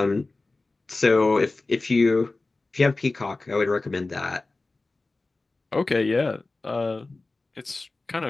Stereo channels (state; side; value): quieter; right; 3.3 dB